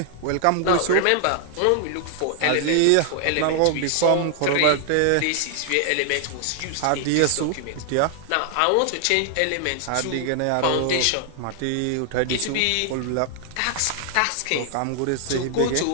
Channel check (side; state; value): both; different; correlation 0.00